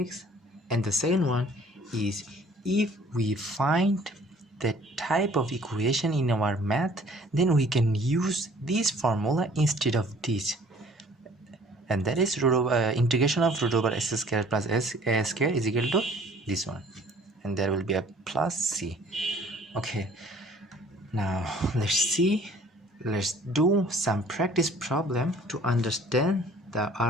and the second one is if we find the type of equation in our math, then we can use this formula instead of this, and that is root over integration of root over s square plus a square is equal to this one, and there will be a plus c. Okay, now let's do some practice problem to understand the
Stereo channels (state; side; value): normal; both; correlation 0.54